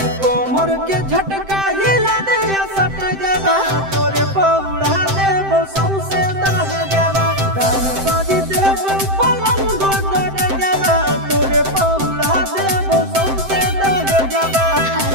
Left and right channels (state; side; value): late; left; 7.7 ms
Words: कोमर के झटका हिला दे सट जावा तोरे पौड़ा देबो सौसे दह जावा दान बाजी देबो पलंग दह जावा तोरे पौड़ा देबो सौसे दह जावा।